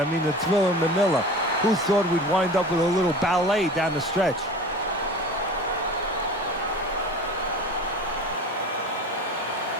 mean, the Thriller Manila. Who thought we'd wind up with a little ballet down the stretch?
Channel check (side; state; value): both; normal; correlation 0.37